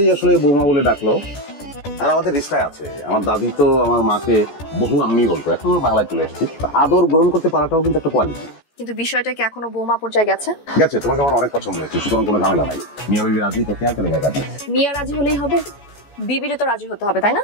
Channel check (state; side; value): late; right; 14 ms